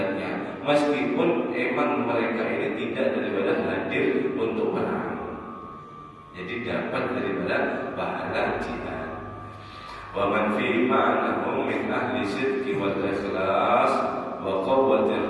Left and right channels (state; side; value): identical; both; correlation 1.00